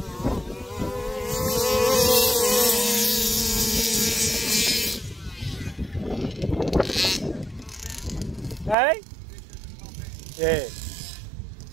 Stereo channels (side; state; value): left; drops out; at 8.8 s